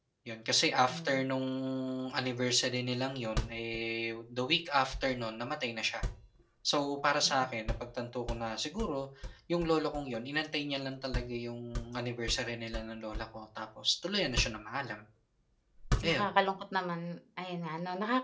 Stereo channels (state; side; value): identical; both; correlation 1.00